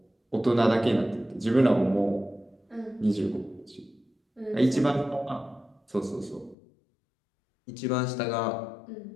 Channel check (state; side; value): drops out; right; at 6.6 s